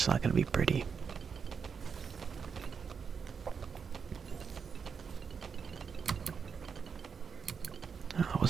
not going to be pretty. Oh, it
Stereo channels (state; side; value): quieter; left; 6.2 dB